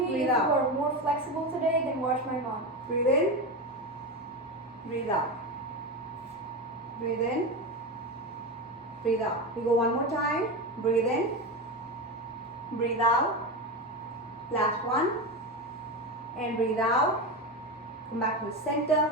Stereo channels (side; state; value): both; normal; correlation 0.19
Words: Breathe if out. you are more flexible today, then watch my mom. breathe in, breathe out. Breathe in, breathe out. We go one more time. Breathe in, breathe out. Last one. And breathe out. Come back to the